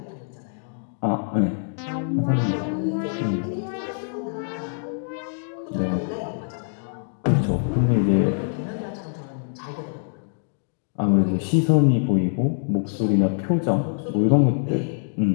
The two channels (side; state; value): right; silent; digital silence